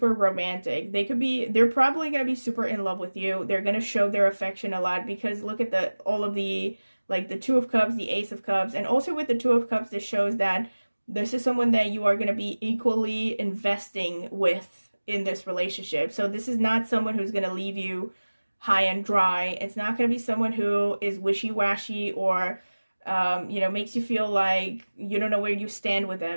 romantic. They're probably going to be super in love with you. They're going to show their affection a lot because look at all of the, like the 2 of Cups, the Ace of Cups, and also with the 2 of Cups, this shows that this is someone that you are going to be equally investing with in this relationship. So this is not someone who's going to leave you high and dry. It's not going to be someone who is wishy-washy or you know, makes you feel like you don't know where you stand with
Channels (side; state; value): both; inverted; correlation -1.00